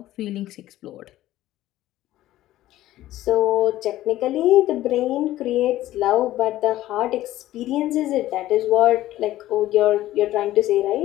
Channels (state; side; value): quieter; right; 14.7 dB